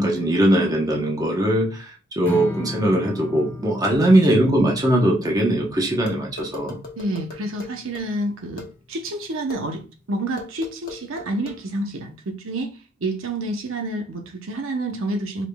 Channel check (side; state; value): both; normal; correlation 0.72